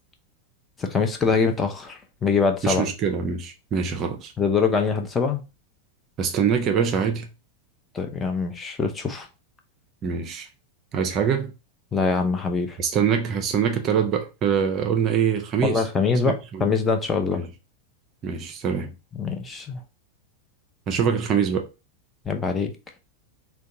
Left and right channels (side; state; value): both; normal; correlation 0.36